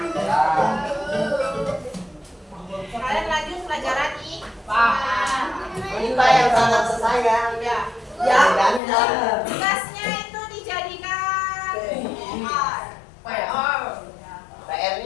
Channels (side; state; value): right; drops out; at 8.8 s